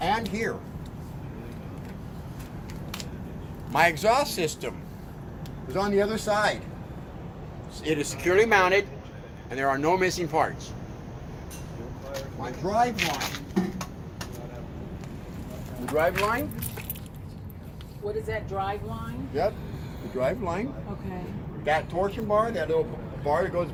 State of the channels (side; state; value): both; identical; correlation 1.00